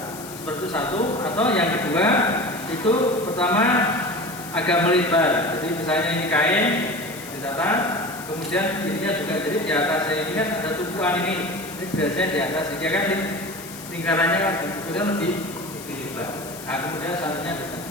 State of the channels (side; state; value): left; noise; hiss, 14 dB below the sound